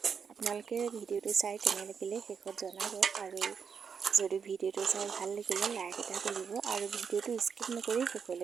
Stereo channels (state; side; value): quieter; left; 6.5 dB